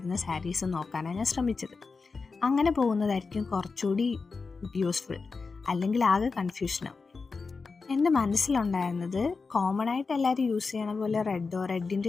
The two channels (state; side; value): quieter; right; 4.5 dB